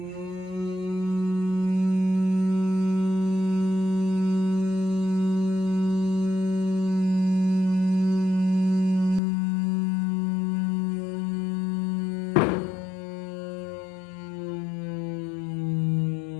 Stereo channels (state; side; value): drops out; right; at 9.2 s